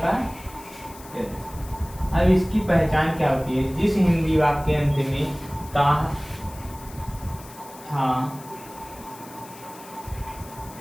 का टेंस। अब इसकी पहचान क्या होती है? जिस हिंदी वाक्य के अंत में ता, था,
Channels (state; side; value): noise; left; hiss, 19 dB below the sound